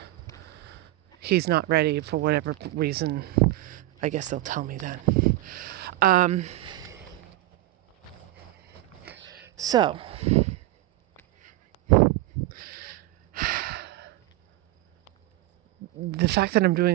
he's not ready for whatever reason, I guess they'll tell me then. So, the fact that I'm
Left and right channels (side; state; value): left; quieter; 16.8 dB